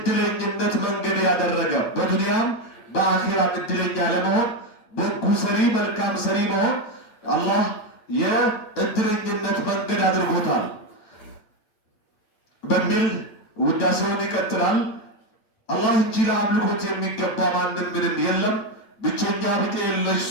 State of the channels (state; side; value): late; right; 9.0 ms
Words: መንገድ ያደረገ፣ በዱንያም በአኺራም እድለኛ ለመሆን በጎ ሰሪ፣ መልካም ሰሪ መሆን አላህ የእድለኝነት መንገድ አድርጎታል በሚል ውዳሴውን ይቀጥላል። አላህ እንጂ ለአምልኮት የሚገባ ማንም ምንም የለም፣ ብቸኛ ብጤ የለሽ